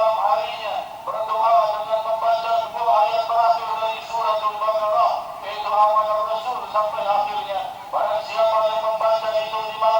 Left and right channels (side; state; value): both; identical; correlation 1.00